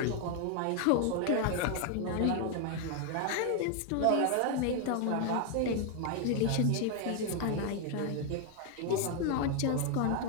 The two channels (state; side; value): different; both; correlation 0.00